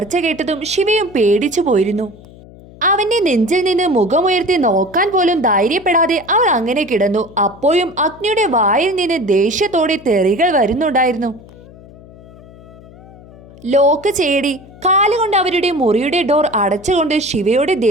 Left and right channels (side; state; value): left; noise; hum, 21 dB below the sound